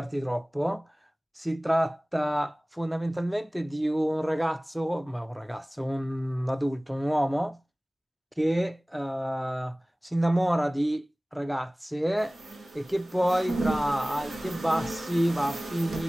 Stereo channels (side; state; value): both; normal; correlation 0.98